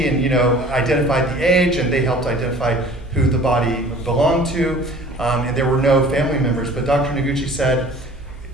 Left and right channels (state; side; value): normal; both; correlation 0.47